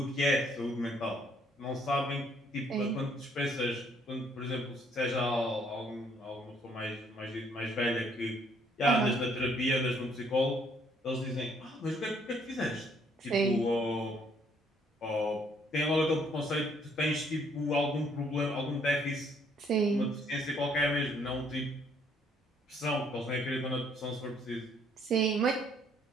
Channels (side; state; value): both; normal; correlation 0.66